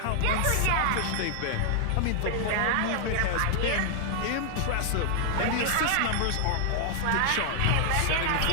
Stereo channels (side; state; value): both; different; correlation -0.01